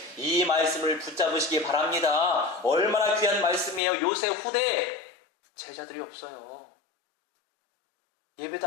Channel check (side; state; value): right; drops out; at 3.8 s